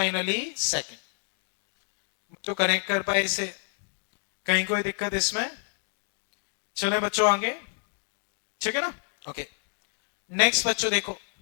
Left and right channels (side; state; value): right; silent; 59 dB below the other